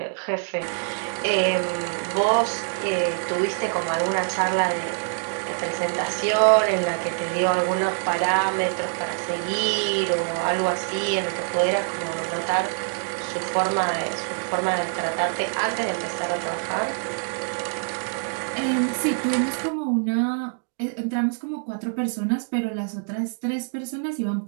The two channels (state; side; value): silent; left; digital silence